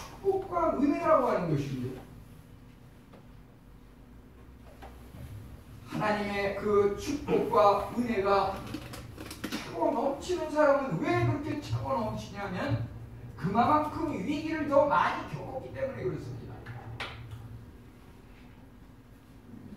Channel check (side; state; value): both; identical; correlation 1.00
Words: 은혜라고 하는 것입니다. 하나님의 그 축복과 은혜가 차고 넘치는 사람은 왜 그렇게 차고 넘치냐면 그만큼 위기를 더 많이 겪었기 때문에 그렇습니다.